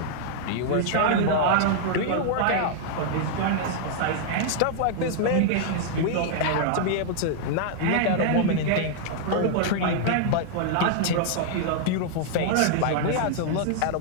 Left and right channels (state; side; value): different; both; correlation -0.01